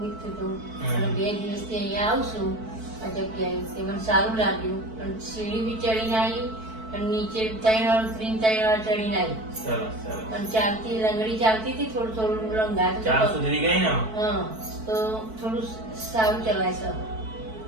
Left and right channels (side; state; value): left; late; 4.5 ms